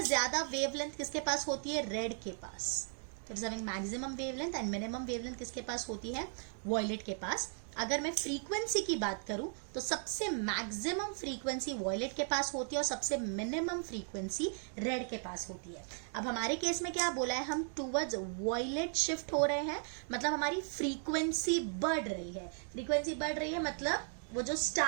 ज्यादा वेवलेंथ किसके पास होती है, रेड के पास। It is having maximum wavelength and minimum wavelength किसके पास होती है, वॉयलेट के पास। अगर मैं फ्रीक्वेंसी की बात करूं तो सबसे मैक्सिमम फ्रीक्वेंसी वॉयलेट के पास होती है और सबसे मिनिमम फ्रीक्वेंसी रेड के पास होती है। अब हमारे केस में क्या बोला है, हम टूवर्ड्स वॉयलेट शिफ्ट हो रहे हैं, मतलब हमारी फ्रीक्वेंसी बढ़ रही है। फ्रीक्वेंसी बढ़ रही है मतलब वो जो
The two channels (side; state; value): left; silent; 53 dB below the other